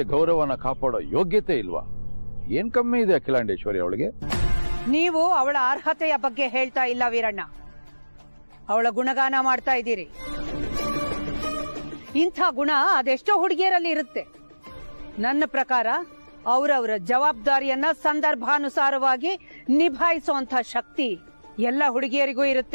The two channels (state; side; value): inverted; both; correlation -1.00